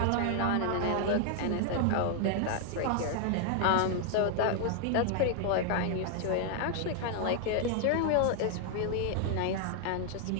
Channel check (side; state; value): both; different; correlation 0.00